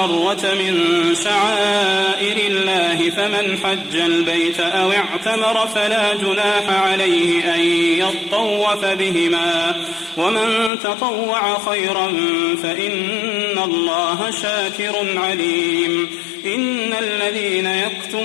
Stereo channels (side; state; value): right; drops out; at 10.7 s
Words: من شعائر الله فمن حج البيت أو اعتمر فلا جناح عليه أن يطوف بهما ومن تطوع خيرا فإن الله شاكر عليم إن الذين